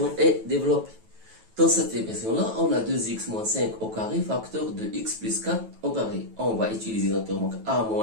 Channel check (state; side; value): late; left; 9.2 ms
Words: est développée. Dans cette expression-là, on a 2x moins 5 au carré, facteur de x plus 4 au carré. On va utiliser notre remarque a